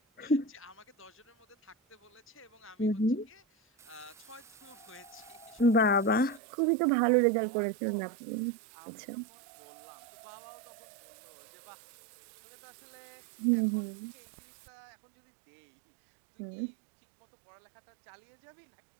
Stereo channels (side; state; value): left; drops out; at 6.4 s